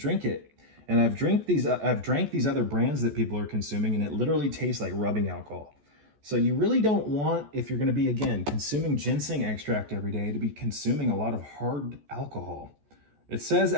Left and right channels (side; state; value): left; late; 14 ms